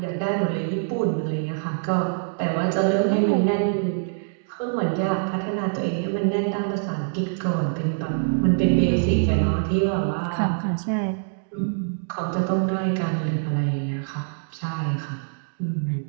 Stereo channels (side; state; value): left; silent; digital silence